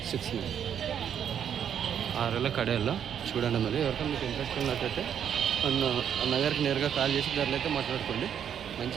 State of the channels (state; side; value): quieter; left; 8.8 dB